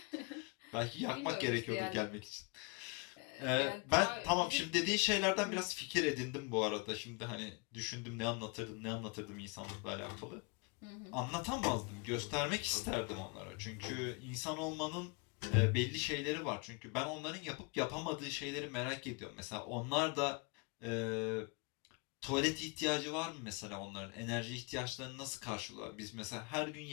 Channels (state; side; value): quieter; right; 31.4 dB